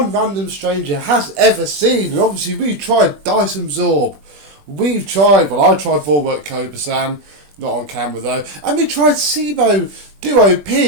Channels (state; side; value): late; left; 21 ms